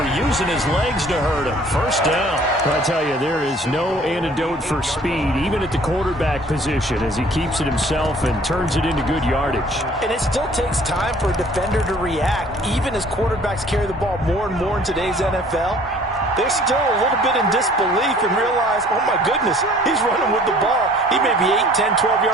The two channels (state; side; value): normal; both; correlation 0.54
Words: using his legs to hurt him. First down. I tell you, there is no antidote for speed, even at the quarterback position, as he keeps it himself and turns it into good yardage. And it still takes time for a defender to react, even as quarterbacks carry the ball more and more in today's NFL. They're still a little bit in disbelief and realize, oh my goodness, he's running with the ball. He may be 8, 10, 12